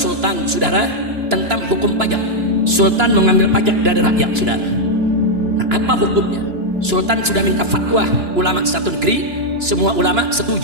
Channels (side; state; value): left; late; 2.9 ms